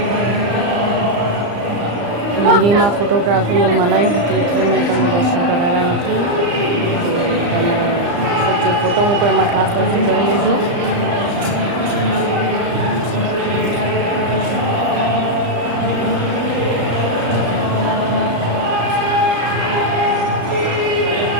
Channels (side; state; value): left; late; 35 ms